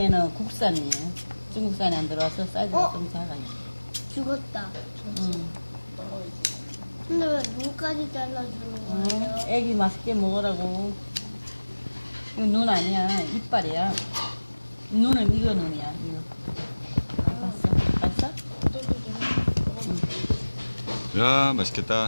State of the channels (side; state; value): both; inverted; correlation -1.00